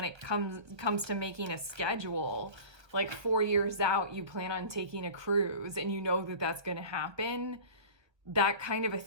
it comes to making a schedule, like 4 years out, you plan on taking a cruise and you know that that's going to happen. That kind of a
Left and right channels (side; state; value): left; late; 1.1 ms